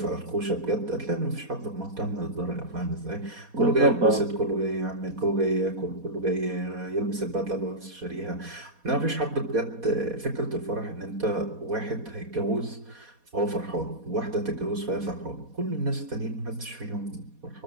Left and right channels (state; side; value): late; left; 4.2 ms